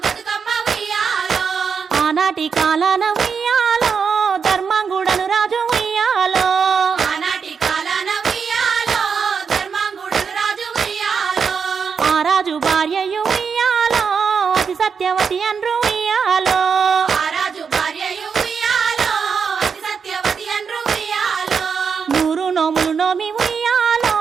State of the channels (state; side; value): quieter; left; 6.1 dB